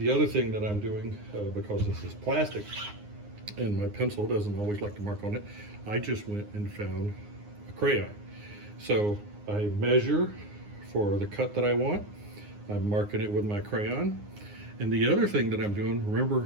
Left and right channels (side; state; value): left; late; 9.7 ms